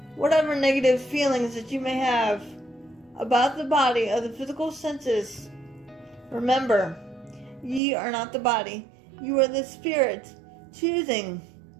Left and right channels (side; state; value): left; drops out; at 7.8 s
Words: whatever negative feelings that you may have about the body of the physical senses, remember, ye are not the body. You are the spirit choosing